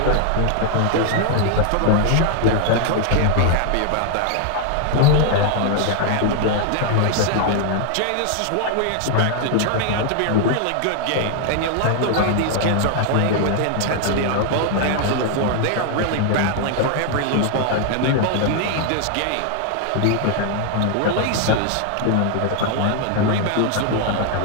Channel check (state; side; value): different; both; correlation 0.00